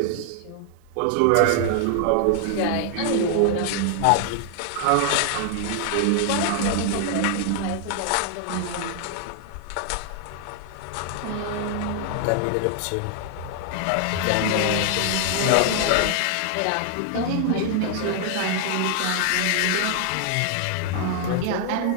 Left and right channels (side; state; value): both; different; correlation 0.00